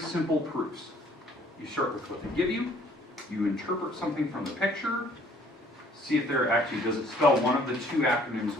proofs. You start with what they give you. You interpret something from the picture. See if there actually does it spell one of the two acronyms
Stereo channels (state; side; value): normal; both; correlation 0.59